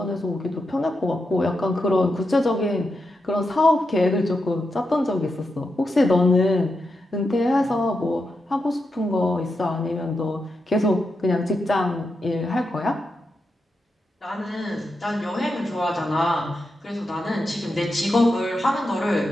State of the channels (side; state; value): both; normal; correlation 0.87